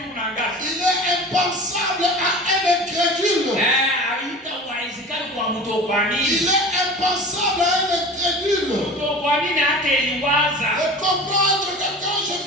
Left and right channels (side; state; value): both; normal; correlation 0.37